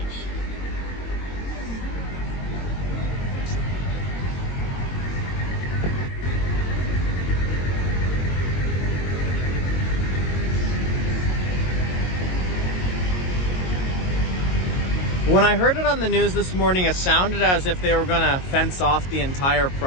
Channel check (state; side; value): late; right; 22 ms